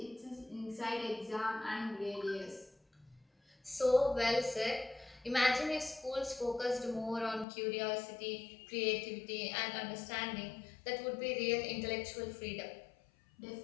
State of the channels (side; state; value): right; drops out; at 7.5 s